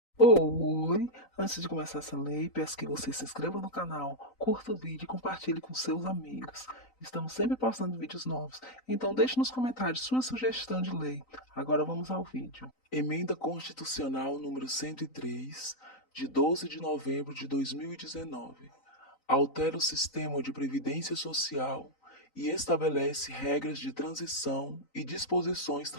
Oi! Antes de começar essa lei, peço que você se inscreva no canal, curta o vídeo e compartilhe com seus amigos. Estamos sempre postando vídeos novos, então deixe nos comentários sua sugestão de lei. Agora vamos ao vídeo. Emenda Constitucional número 103, de 12 de novembro de 2019. Altera o sistema de previdência social e estabelece regras de transição e disposições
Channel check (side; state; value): right; late; 3.9 ms